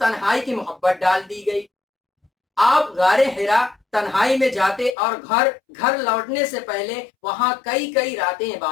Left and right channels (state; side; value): drops out; right; at 5.0 s